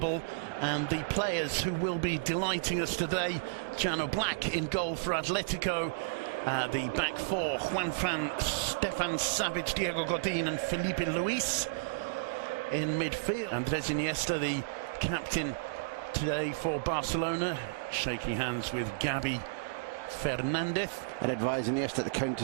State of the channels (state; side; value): quieter; left; 29.1 dB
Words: and the players who will be delighting us today, Jano Black in goal for Atletico, the back four, Juanfran, Stefan Savic, Diego Godin and Felipe Luis in midfield. Andres Iniesta, the captain today for Barcelona, shaking hands with Gabi Fernandez. And advise Iniesta to count